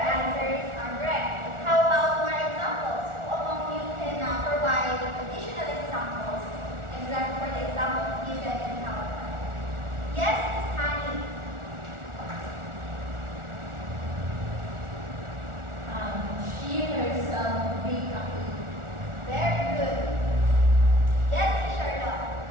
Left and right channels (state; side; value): late; left; 1.4 ms